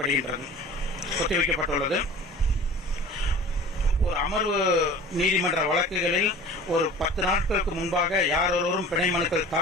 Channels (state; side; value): normal; both; correlation 0.41